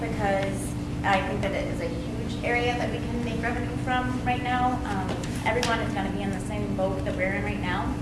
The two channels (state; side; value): identical; both; correlation 1.00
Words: I think that it is a huge area that we can make revenue from right now. Everyone is going to be in the same boat that we're in right now